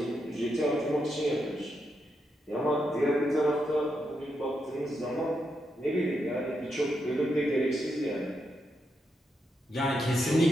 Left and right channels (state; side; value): normal; both; correlation 0.83